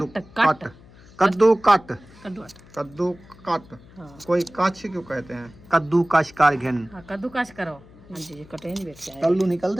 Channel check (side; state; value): left; noise; hum, 23 dB below the sound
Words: कट कद्दू कट कद्दू कद्दू कट। हाँ। कोई कच क्यों कहते हैं? कद्दू कश कर घिन। हाँ कद्दू काश करो। हाँ जी, ये कटे नहीं बैठ जाए। कल्लू